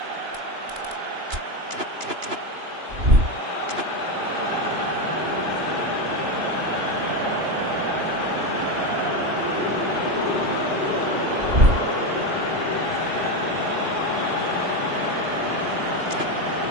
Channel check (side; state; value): left; late; 2.9 ms